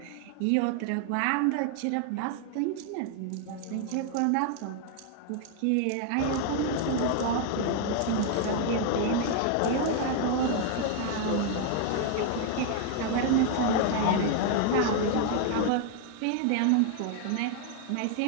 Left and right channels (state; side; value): different; both; correlation 0.00